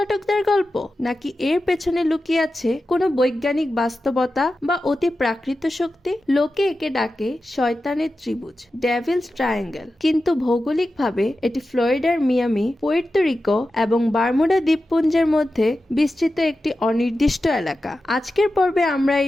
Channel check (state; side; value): normal; both; correlation 0.92